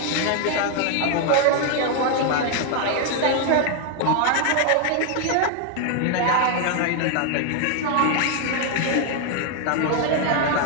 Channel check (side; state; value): both; different; correlation 0.01